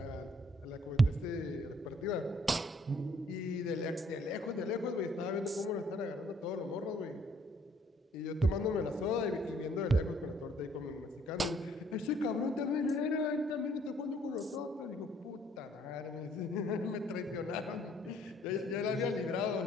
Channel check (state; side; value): normal; both; correlation 0.63